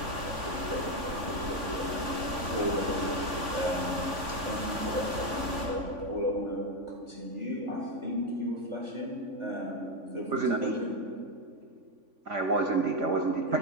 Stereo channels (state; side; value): late; left; 3.5 ms